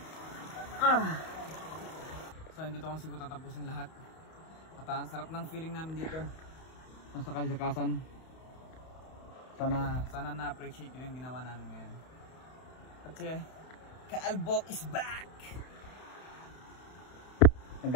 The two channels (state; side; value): late; right; 31 ms